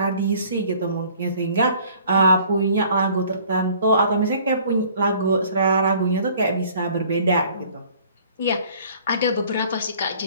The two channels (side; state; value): both; inverted; correlation -0.54